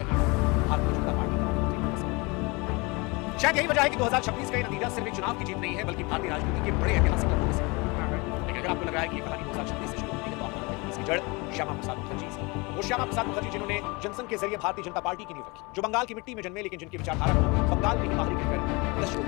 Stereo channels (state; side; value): quieter; right; 26.8 dB